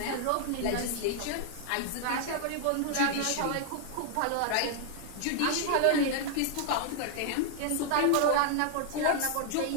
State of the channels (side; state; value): both; different; correlation 0.00